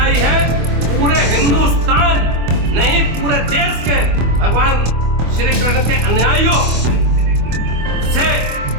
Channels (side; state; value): left; late; 25 ms